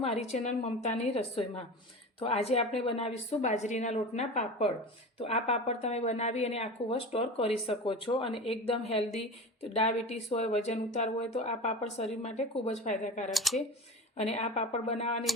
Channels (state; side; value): normal; both; correlation 0.30